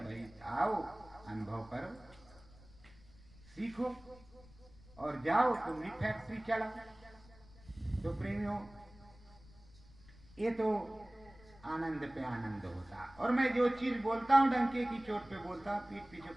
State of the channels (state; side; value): noise; left; rumble, 23 dB below the sound